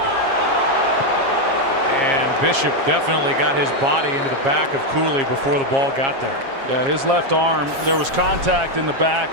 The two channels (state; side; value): late; left; 7.4 ms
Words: And Bishop definitely got his body into the back of Cooley before the ball got there. Yeah, his left arm, there was contact in the